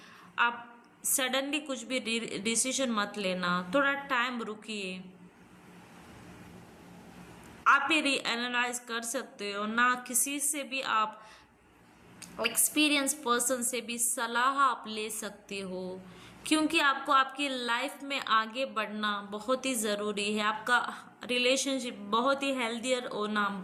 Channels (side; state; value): both; identical; correlation 1.00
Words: आप सडनली कुछ भी डिसीजन मत लेना, थोड़ा टाइम रुकिए। आप ये रीएनालाइज कर सकते हो ना, किसी से भी आप एक्सपीरियंस पर्सन से भी सलाह आप ले सकते हो, क्योंकि आपको आपकी लाइफ में आगे बढ़ना बहुत ही ज़रूरी है। आपका रिलेशनशिप बहुत ही हेल्दियर होना